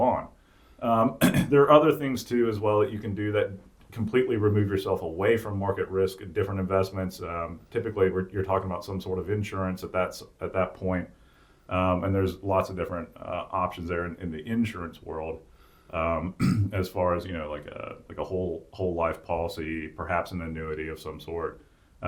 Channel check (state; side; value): identical; both; correlation 1.00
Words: on. There are other things too as well that you can do that completely remove yourself away from market risk in different investments. Typically, you're talking about some sort of insurance at that point. And there's lots of different options there in the insurance world, as far as like a whole life policy, perhaps an annuity of some sort.